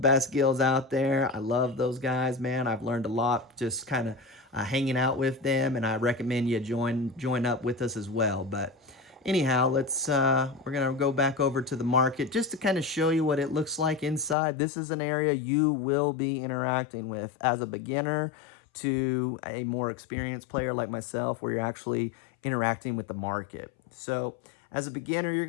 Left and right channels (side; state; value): right; drops out; at 14.4 s